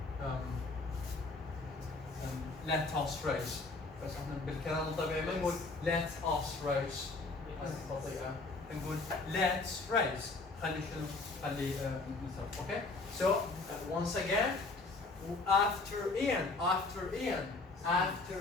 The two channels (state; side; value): quieter; right; 3.6 dB